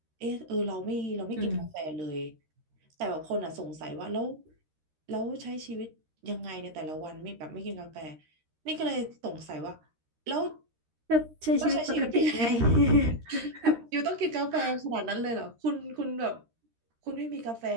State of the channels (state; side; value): late; left; 13 ms